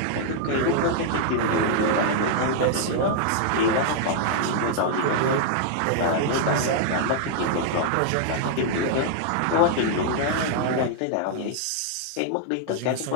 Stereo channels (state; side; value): different; both; correlation -0.01